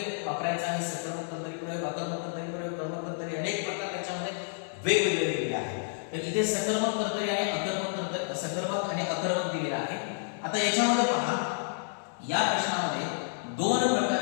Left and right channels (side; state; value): right; silent; 58 dB below the other